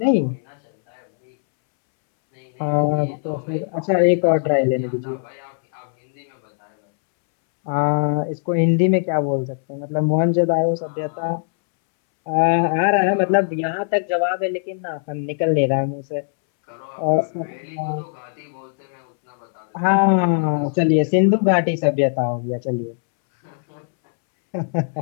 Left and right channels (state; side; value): silent; right; 65 dB below the other